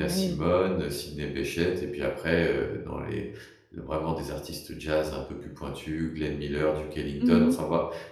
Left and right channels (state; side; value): identical; both; correlation 1.00